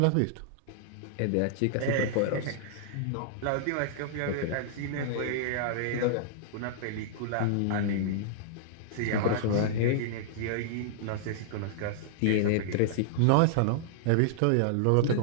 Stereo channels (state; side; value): different; both; correlation -0.01